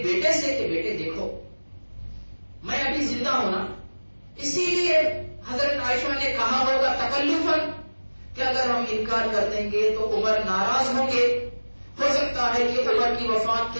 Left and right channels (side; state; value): both; inverted; correlation -1.00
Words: بیٹے سے کہ بیٹے دیکھو، میں ابھی زندہ ہوں نا، اسی لیے حضرت عائشہ نے کہا ہوگا تکلفاً کہ اگر ہم انکار کر دیں گے تو عمر ناراض ہوں گے، ہو سکتا ہے کہ عمر کی وفات